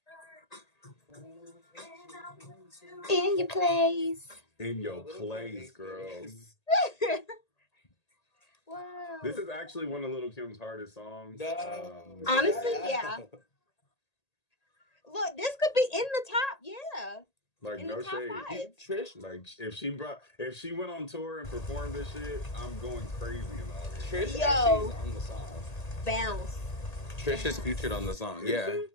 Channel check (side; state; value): right; late; 1.8 ms